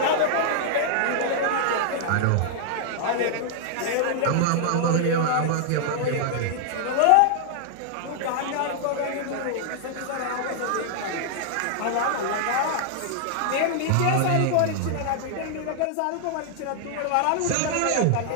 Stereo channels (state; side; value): different; both; correlation -0.01